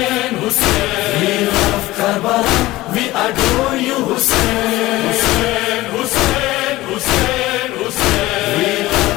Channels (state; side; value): quieter; right; 18.0 dB